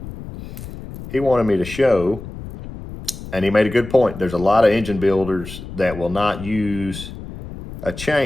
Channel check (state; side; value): noise; left; rumble, 12 dB below the sound